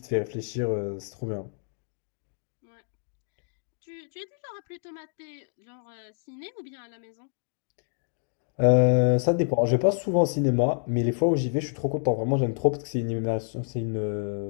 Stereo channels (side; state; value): right; silent; digital silence